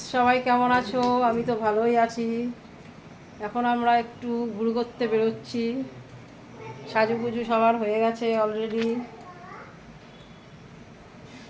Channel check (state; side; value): identical; both; correlation 1.00